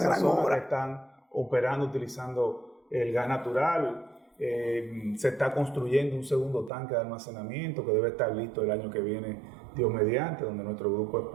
zona que están operando utilizando el gas natural. Se está construyendo un segundo tanque de almacenamiento que debe estar listo el año que viene, Dios mediante, donde nuestro grupo es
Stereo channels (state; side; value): drops out; left; at 6.7 s